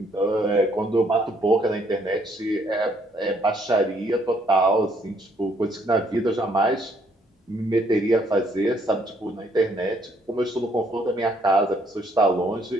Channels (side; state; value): both; normal; correlation 0.68